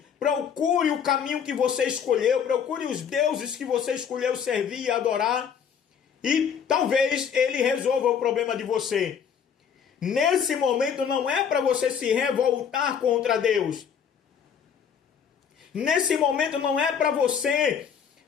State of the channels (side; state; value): right; quieter; 7.5 dB